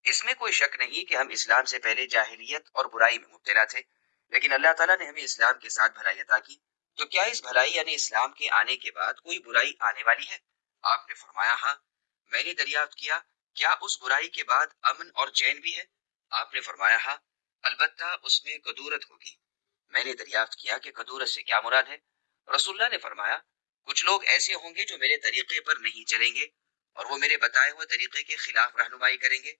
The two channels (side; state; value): right; silent; digital silence